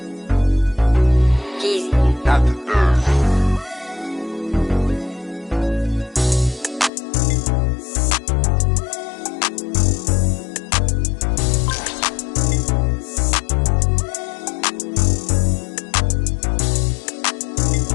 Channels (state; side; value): drops out; right; at 6.9 s